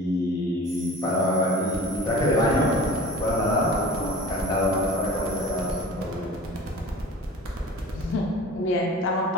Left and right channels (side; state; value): both; normal; correlation 0.40